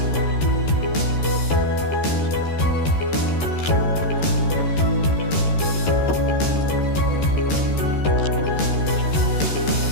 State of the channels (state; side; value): late; right; 13 ms